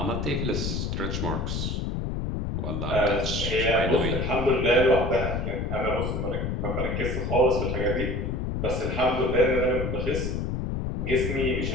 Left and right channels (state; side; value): noise; left; rumble, 2 dB below the sound